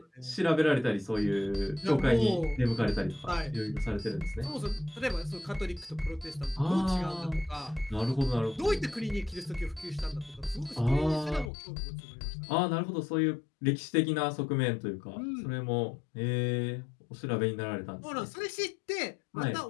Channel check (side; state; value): right; drops out; at 11.5 s